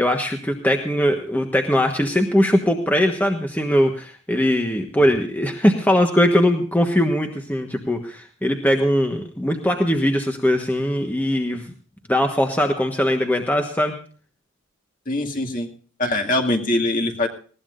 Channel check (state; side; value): normal; both; correlation 0.82